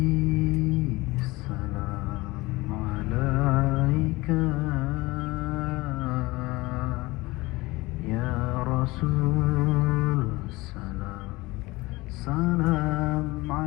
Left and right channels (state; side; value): quieter; right; 21.5 dB